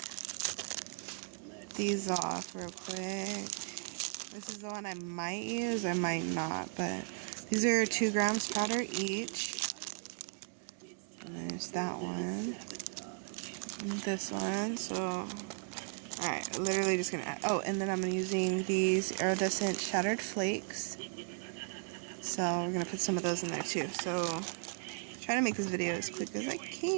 these off real quick. This is the one I might use, I might not, but these are 2 grams powder each. And there's that one. And this one, so... Alright, literally just gonna add... Oh, and then I'm using these iridescent shattered flakes. So we're gonna put some of those in there too. So, trying to make this video as quick as I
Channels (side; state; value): left; silent; 54 dB below the other